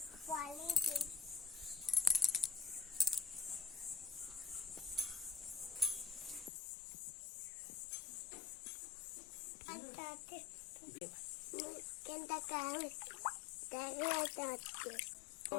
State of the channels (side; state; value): right; drops out; at 6.5 s